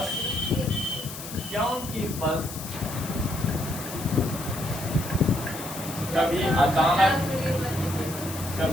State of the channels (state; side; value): noise; left; hiss, 10 dB below the sound